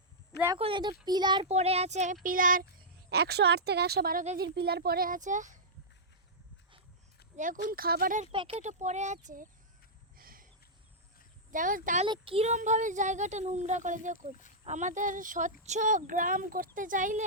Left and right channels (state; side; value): normal; both; correlation -0.11